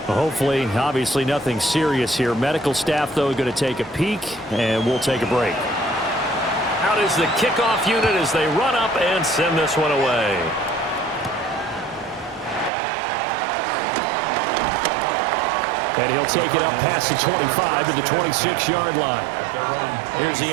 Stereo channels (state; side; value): drops out; left; at 12.7 s